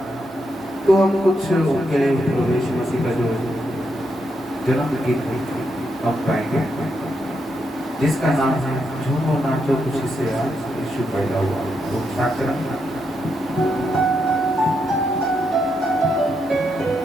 तो हम कुछ उनके लिए प्रवेश मसीह का जो जन्म गीत हम गाएंगे जिसका नाम है झूमो नाचो खुशी से आज यीशु पैदा हुआ। तो स्टार्ट करें।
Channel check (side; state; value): both; normal; correlation 0.81